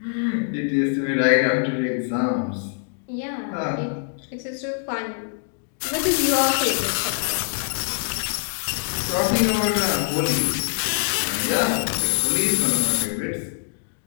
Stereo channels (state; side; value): silent; right; 56 dB below the other